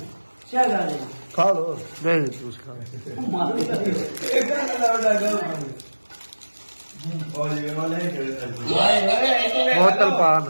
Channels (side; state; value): both; inverted; correlation -1.00